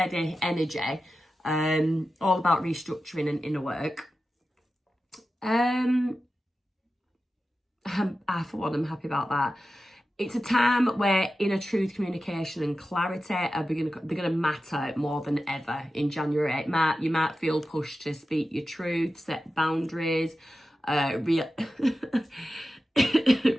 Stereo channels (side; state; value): both; normal; correlation 0.93